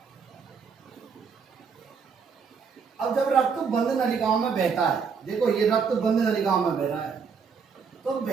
अब जब रक्त बंद नलिकाओं में बहता है, देखो ये रक्त बंद नलिकाओं में बह रहा है, तो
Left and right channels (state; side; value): quieter; left; 5.9 dB